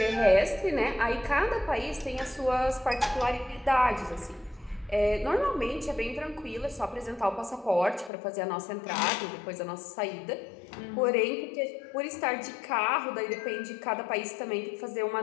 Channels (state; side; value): drops out; right; at 8.1 s